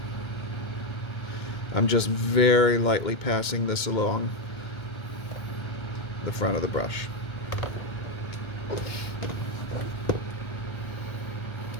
I'm just very lightly passing this along the front of the brush.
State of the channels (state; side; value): late; right; 2.2 ms